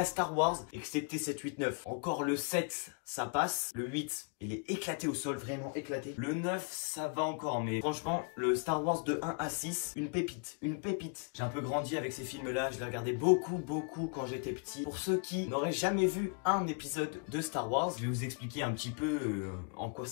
Star Wars, excepté 7, 8, 9. Encore le 7, ça passe. Le 8, il est éclaté au sol, vraiment éclaté. Le 9, ça va encore, mais franchement, le Star Wars de 1 à 6, une pépite, une pépite. J'ai un peu grandi avec ces films-là, je les regardais beaucoup quand j'étais petit. Pour ceux qui n'auraient jamais vu un épisode de Star Wars, je vais vous expliquer un petit peu en quoi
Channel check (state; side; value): quieter; right; 35.8 dB